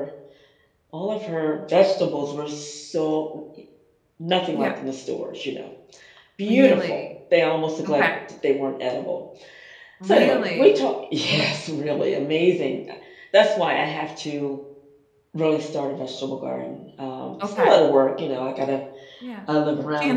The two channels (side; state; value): both; identical; correlation 1.00